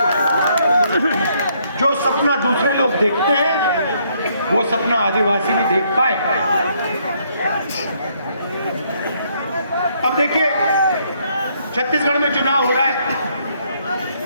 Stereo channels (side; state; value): both; inverted; correlation -0.70